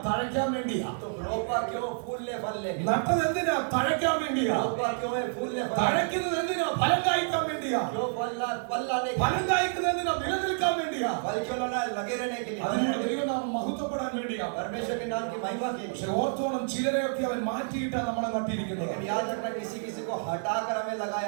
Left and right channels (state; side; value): silent; left; digital silence